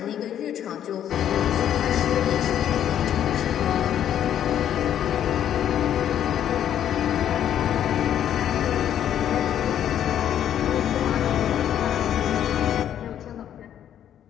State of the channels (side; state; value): right; quieter; 10.3 dB